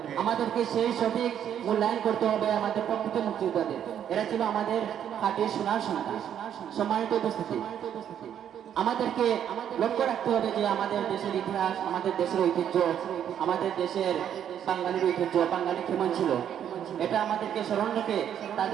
আমাদেরকে সেই সঠিক মূল্যায়ন করতে হবে আমাদের প্রকৃত মুক্তিযোদ্ধাদের। এরা ছিল আমাদের খাঁটি সোনার সন্তান। সম্মানিত উপস্থিতি, আমাদেরকে লক্ষ্য রাখতে হবে যে আমাদের দেশের ইতিহাস, আমাদের দেশের ঐতিহ্য, আমাদের দেশের বাঙালির ঐতিহ্য, বাঙালি কেমন ছিল, এটা আমাদেরকে স্মরণ রেখে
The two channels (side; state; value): left; quieter; 9.5 dB